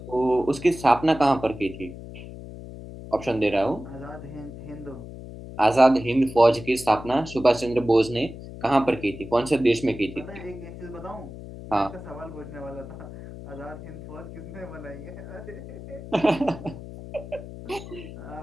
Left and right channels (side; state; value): left; noise; hum, 13 dB below the sound